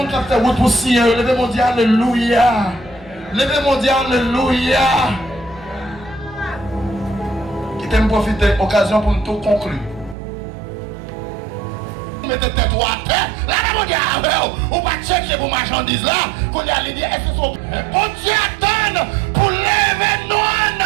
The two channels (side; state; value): left; drops out; at 10.2 s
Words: qui a fait route pour Seigneur, levez-moi dire Alléluia. Levez-moi dire Alléluia. Qui t'aime profiter de l'occasion pour nous tout conclure. Mettez tête à terre. Là, mon Dieu, on va chercher pour marchandises là. Qu'on y a dit, est-ce que son bon Dieu attend pour lever nous